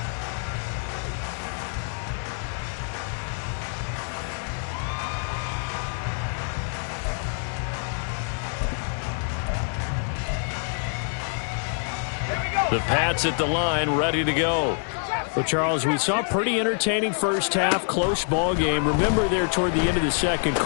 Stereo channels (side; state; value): right; silent; 55 dB below the other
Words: The Pats at the line, ready to go. Well, Charles, we saw a pretty entertaining first half, close ball game. Remember there toward the end of the second